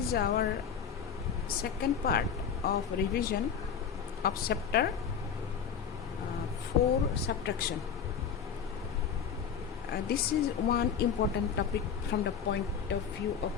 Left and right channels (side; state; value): right; quieter; 7.2 dB